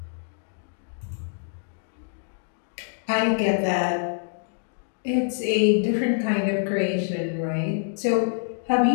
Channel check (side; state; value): right; silent; digital silence